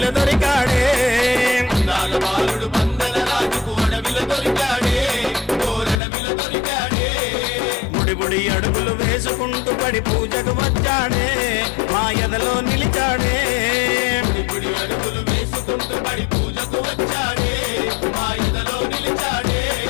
దొరికాడే అందాల బాలుడు పందల రాజుకు అడవిలో దొరికాడే ఓరడవిలో దొరికాడే ముడిబుడి అడుగులు వేసుకుంటూ పడి పూజకు వచ్చాడే మా ఎదలో నిలిచాడే ముడిబుడి అడుగులు వేసుకుంటూ పడి పూజకు వచ్చాడే మా ఎదలో నిలిచాడే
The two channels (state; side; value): drops out; right; at 6.0 s